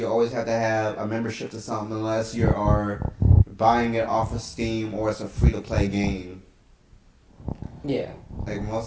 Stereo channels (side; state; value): both; identical; correlation 1.00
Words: always have to have a membership to something unless you are buying it off of Steam or it's a free-to-play game. Yeah. Like